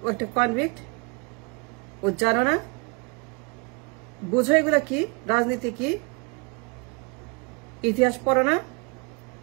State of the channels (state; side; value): quieter; left; 31.4 dB